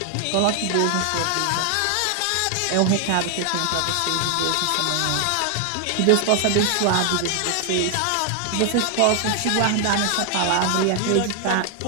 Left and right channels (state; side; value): different; both; correlation 0.00